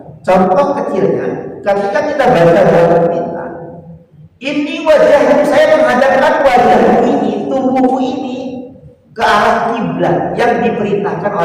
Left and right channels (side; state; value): both; identical; correlation 1.00